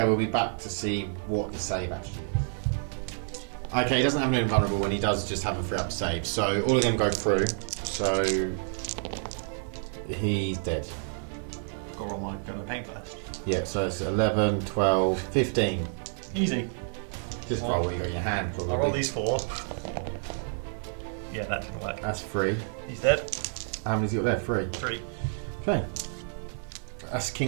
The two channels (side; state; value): left; silent; 56 dB below the other